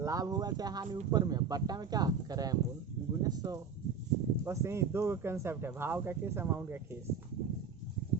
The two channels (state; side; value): quieter; left; 6.1 dB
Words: हुआ चाहे हानि ऊपर में, बट्टा में क्या कैरामुल गुने 100। बस यही 2 कंसेप्ट है, भाव का केस अमाउंट का केस।